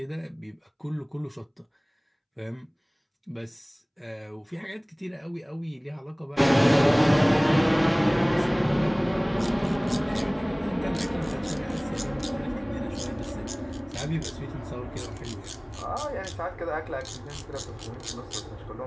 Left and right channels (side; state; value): both; identical; correlation 1.00